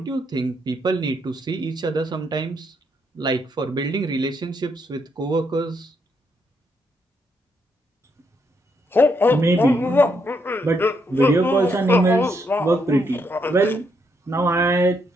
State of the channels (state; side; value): normal; both; correlation 0.76